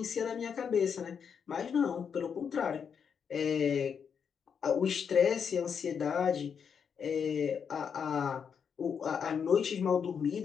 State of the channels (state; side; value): quieter; right; 7.0 dB